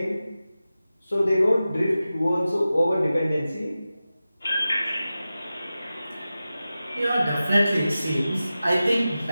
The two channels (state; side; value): inverted; both; correlation -0.94